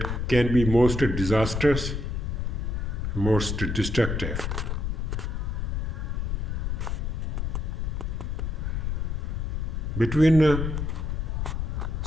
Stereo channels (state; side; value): noise; left; rumble, 1 dB below the sound